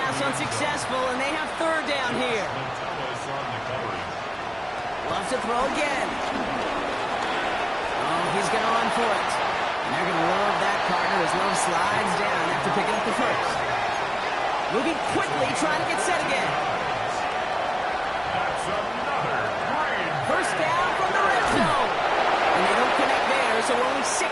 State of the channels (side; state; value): both; identical; correlation 1.00